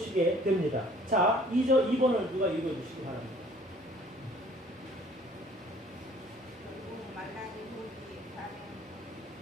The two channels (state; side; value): normal; both; correlation 0.55